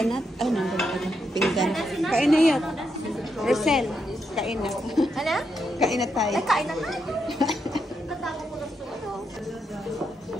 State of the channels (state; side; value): normal; both; correlation 0.82